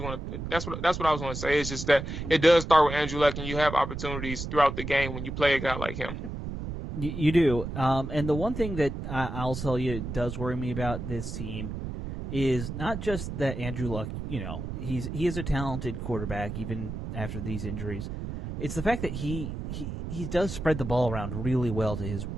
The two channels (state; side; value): noise; right; rumble, 6 dB below the sound